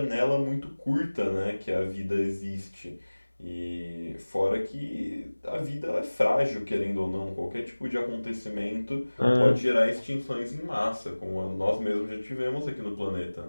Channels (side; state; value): both; inverted; correlation -1.00